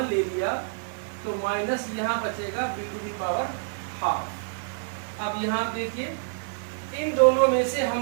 ले लिया तो माइनस यहाँ बचेगा B to the power half. अब यहाँ देखिए इन दोनों में से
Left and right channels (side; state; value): left; silent; digital silence